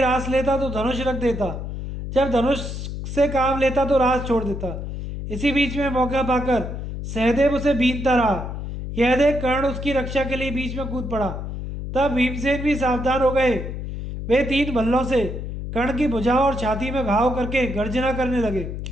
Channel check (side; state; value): left; noise; hum, 6 dB below the sound